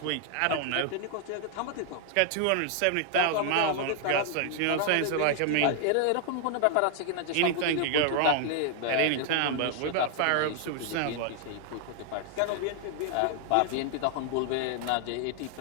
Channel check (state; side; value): different; both; correlation 0.00